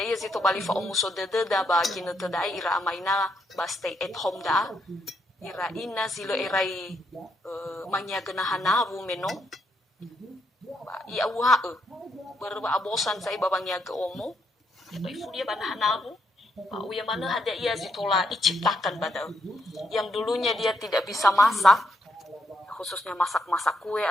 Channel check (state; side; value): normal; both; correlation 0.77